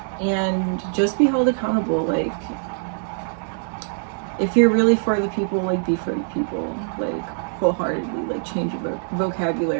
and just be held accountable. Like, if you're really for the people, like, be for the people, like, wholeheartedly, like, change your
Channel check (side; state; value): left; silent; digital silence